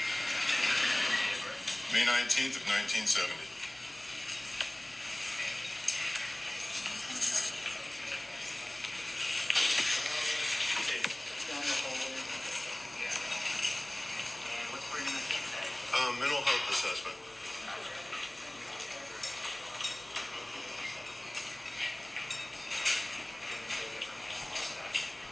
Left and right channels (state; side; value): noise; left; hum, 26 dB below the sound